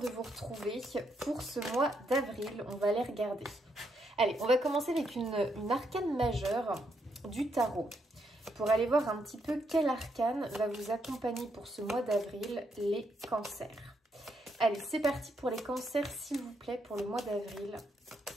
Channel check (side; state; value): both; normal; correlation 0.77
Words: de vous retrouver pour ce mois d'avril. On va aller regarder. Allez, on va commencer avec une arcane majeure du tarot. Pour aller voir un petit peu quel arcane va vous accompagner pour ce mois d'avril, les cancers. Allez, c'est parti pour les cancers, s'il vous plaît, pour le mois d'avril.